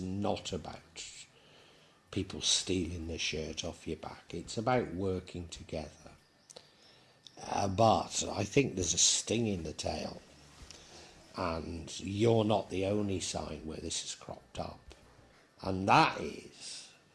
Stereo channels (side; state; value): both; identical; correlation 1.00